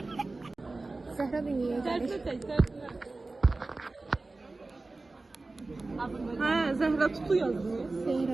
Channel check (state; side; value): quieter; left; 3.3 dB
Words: Zəhra dünyaya gəlir. Ha, Zəhra Tutu yazmış.